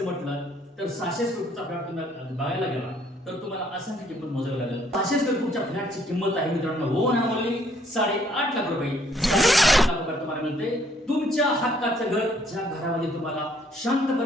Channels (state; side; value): normal; both; correlation 0.65